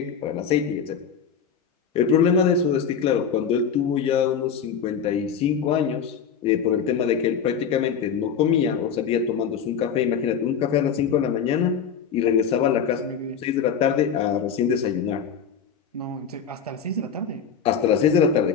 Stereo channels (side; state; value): right; quieter; 7.1 dB